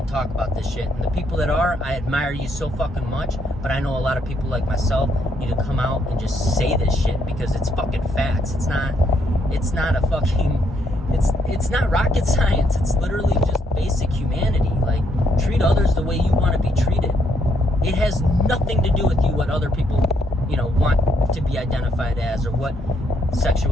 talk about this shit. And the people that are, I admire you so fucking much, but I know a lot of people like myself need to come out and just say this shit, because it's fucking facts. It's not a fucking, it's not rocket science. It's literally just basic humanity. Like, treat others the way you want to be treated. It has nothing to do with you what other people, want to be identified as, or what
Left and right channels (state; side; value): normal; both; correlation 0.73